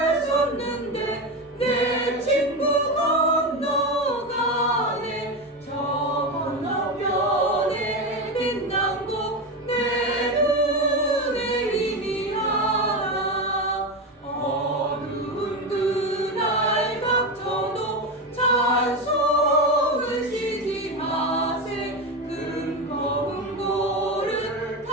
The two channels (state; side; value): normal; both; correlation 0.17